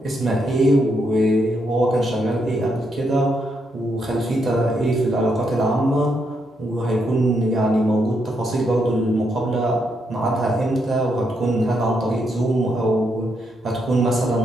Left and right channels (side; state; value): both; normal; correlation 0.79